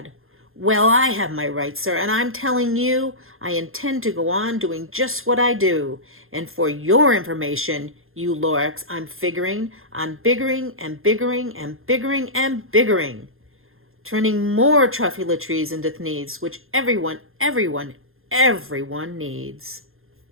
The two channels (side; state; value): left; late; 0.60 ms